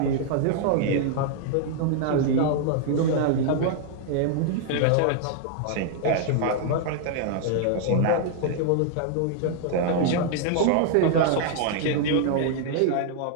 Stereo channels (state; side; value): different; both; correlation 0.00